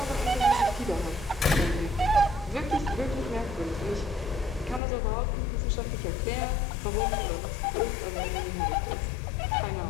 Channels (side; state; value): right; drops out; at 4.8 s